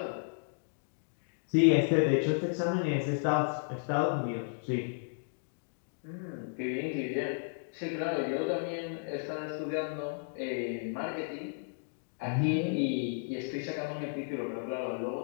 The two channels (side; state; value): right; silent; digital silence